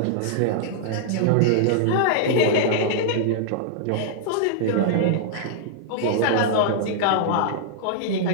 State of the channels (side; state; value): both; different; correlation -0.01